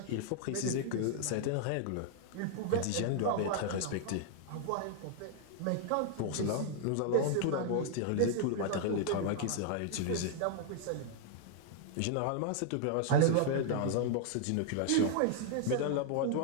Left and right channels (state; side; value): different; both; correlation 0.00